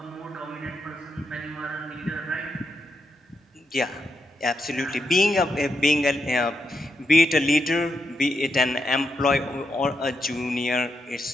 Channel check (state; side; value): normal; both; correlation 0.83